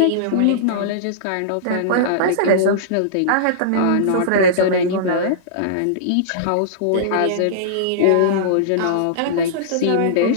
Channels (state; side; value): different; both; correlation -0.03